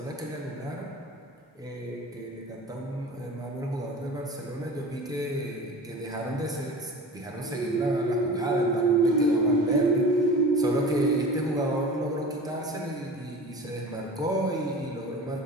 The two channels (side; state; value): both; normal; correlation 0.37